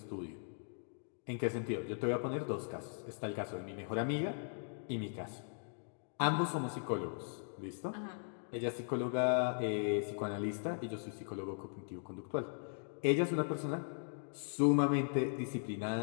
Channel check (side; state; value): right; silent; digital silence